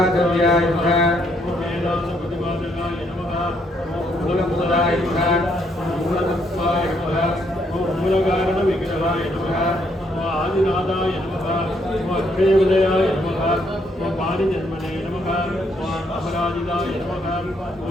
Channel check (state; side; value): normal; both; correlation 0.72